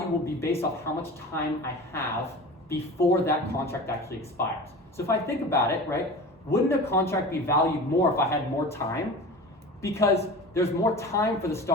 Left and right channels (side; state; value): both; normal; correlation 0.35